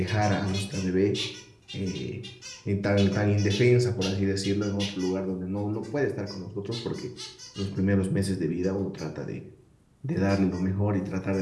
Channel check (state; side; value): identical; both; correlation 1.00